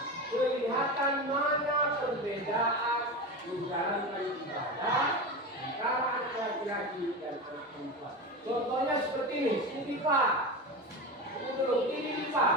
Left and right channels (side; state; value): both; normal; correlation 0.23